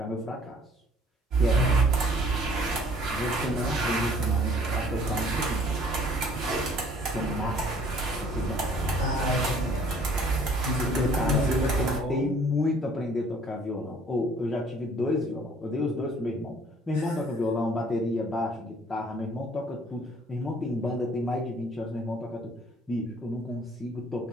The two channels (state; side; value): normal; both; correlation 0.56